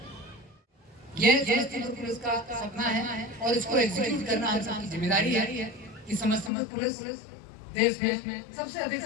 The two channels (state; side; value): drops out; right; at 6.5 s